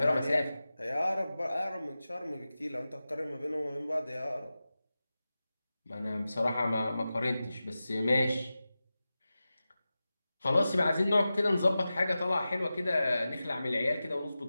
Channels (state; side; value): inverted; both; correlation -0.94